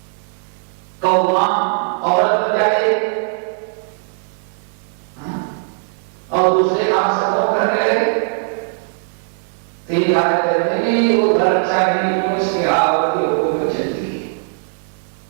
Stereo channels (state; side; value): silent; left; 58 dB below the other